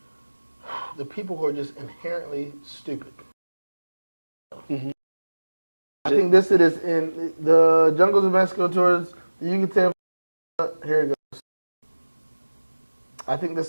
the people who are just inherently stupid. Mm-hmm. I think this it is in the jungles of Mexico towards the Yucatan. Here it goes. I think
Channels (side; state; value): both; inverted; correlation -1.00